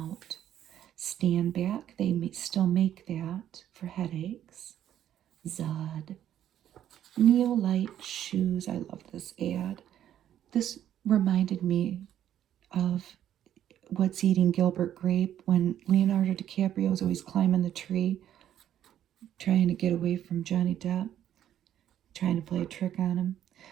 Stand Back, they still make that for headaches. Zud. Neolite shoes, I love this ad. This reminded me of What's Eating Gilbert Grape when Leonardo DiCaprio was always climbing the tree, trying to get away from Johnny Depp, trying to play a trick on him.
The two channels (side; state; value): left; quieter; 10.9 dB